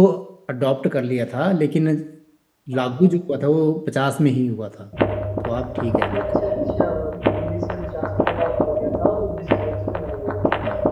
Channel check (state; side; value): identical; both; correlation 1.00